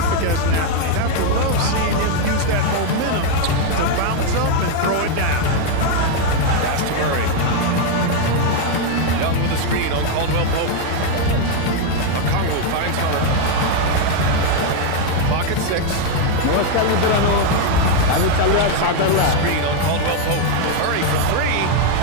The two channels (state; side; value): different; both; correlation 0.01